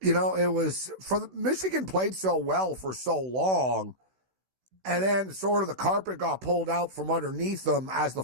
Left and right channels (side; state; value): left; late; 16 ms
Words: It was Michigan played so well for so long, and then sort of the carpet got pulled out from underneath them as the